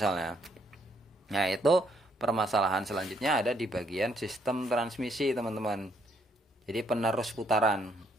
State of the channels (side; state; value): both; normal; correlation 0.71